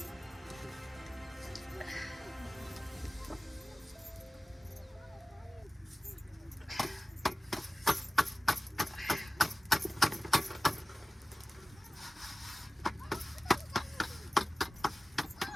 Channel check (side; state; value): both; normal; correlation 0.97